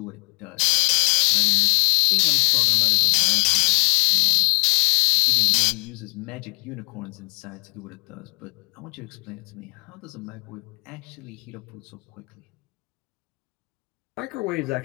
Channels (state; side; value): quieter; right; 31.5 dB